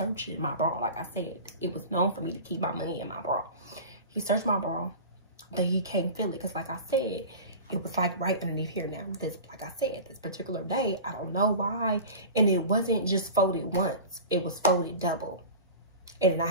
my bra. Like I said, it was known for me to keep my money in my bra. He searched my bra, but he can't feel it. Because like I said, it was like right underneath here now. This, like I said, this particular day, I don't know why. And it wasn't just folded once. It was folded double. And then I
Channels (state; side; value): inverted; both; correlation -0.34